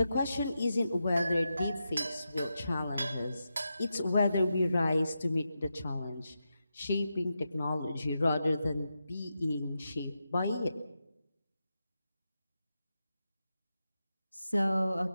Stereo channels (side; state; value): both; inverted; correlation -0.88